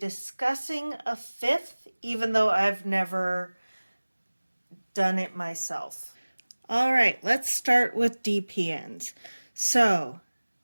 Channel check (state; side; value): inverted; both; correlation -1.00